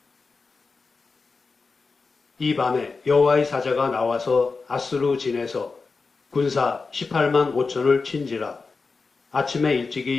이 밤에 여호와의 사자가 나와서 아수르 진에서 군사 18만 5천을 친지라. 아침에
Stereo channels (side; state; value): right; quieter; 4.4 dB